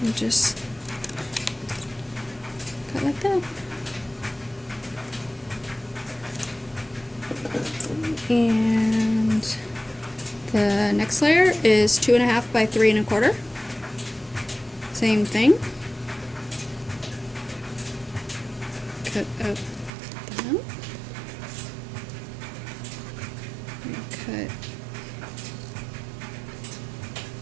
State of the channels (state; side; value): drops out; left; at 19.9 s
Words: and just cut like that. And the next layer is 2 1/2 by 3 1/4. Same thing. Cut up that. And cut